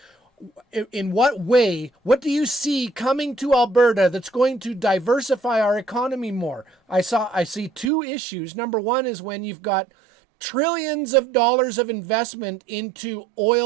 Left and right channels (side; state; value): left; drops out; at 7.9 s